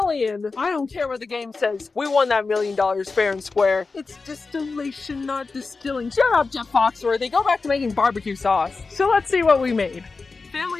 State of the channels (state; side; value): quieter; right; 4.2 dB